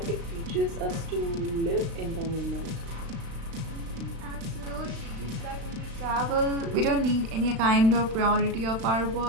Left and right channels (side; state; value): left; late; 36 ms